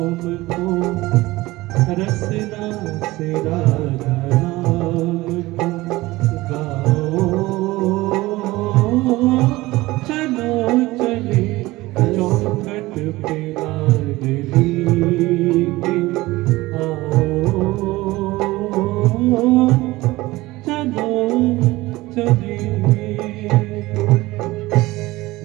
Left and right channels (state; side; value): quieter; left; 19.3 dB